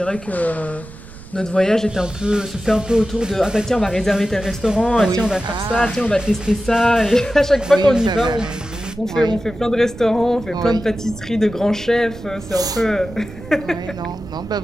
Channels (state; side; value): noise; right; rumble, 18 dB below the sound